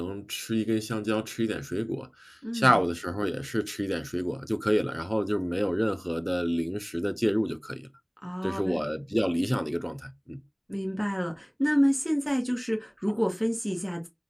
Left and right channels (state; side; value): identical; both; correlation 1.00